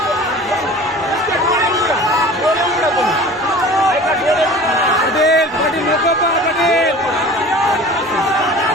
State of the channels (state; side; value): normal; both; correlation 0.41